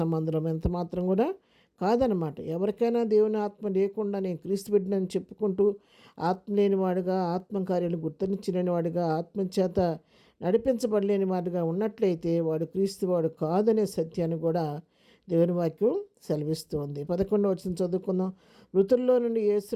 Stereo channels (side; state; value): both; identical; correlation 1.00